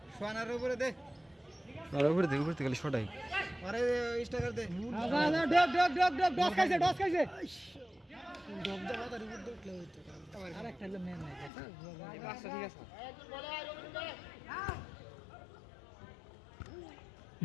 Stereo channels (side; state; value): right; drops out; at 11.5 s